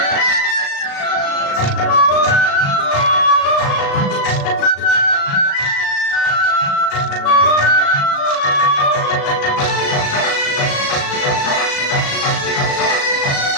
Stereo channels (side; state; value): right; late; 36 ms